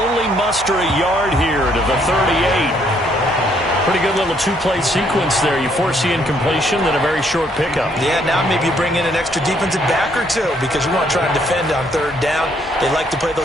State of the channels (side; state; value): both; normal; correlation 0.69